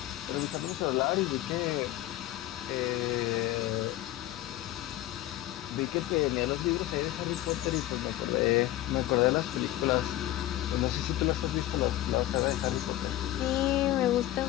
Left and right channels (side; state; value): right; quieter; 14.7 dB